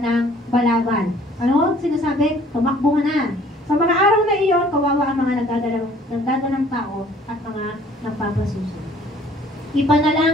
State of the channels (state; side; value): normal; both; correlation 0.56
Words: ng balabal. Ano? Sinasabi, tumakbo na. Sa mga araw na iyon, kawawa ang mga nagdadalang tao at mga nagpapasuso.